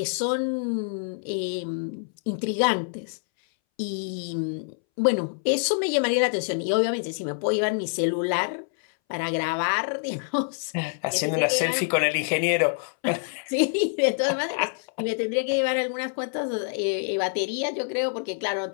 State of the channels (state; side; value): silent; right; 61 dB below the other